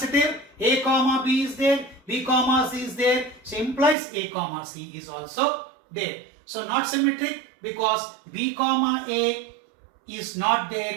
A comma B is there, B comma C is there, so implies A comma C is also there. So not symmetric because B comma A is not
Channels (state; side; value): drops out; left; at 4.0 s